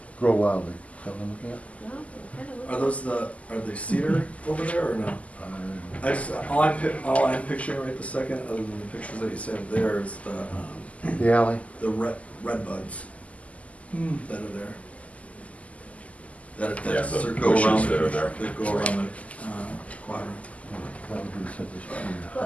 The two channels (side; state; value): right; late; 0.069 ms